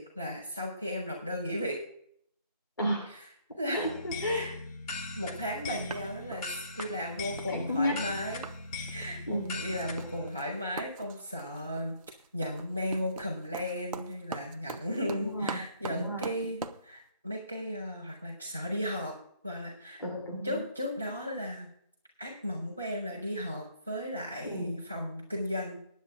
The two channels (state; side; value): inverted; both; correlation -0.64